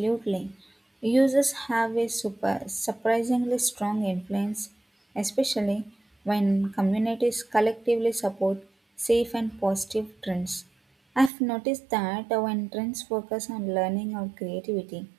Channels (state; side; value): drops out; left; at 11.3 s